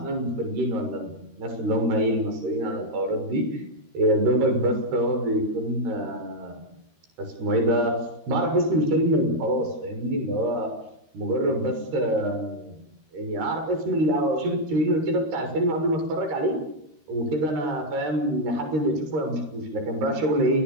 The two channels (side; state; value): left; late; 13 ms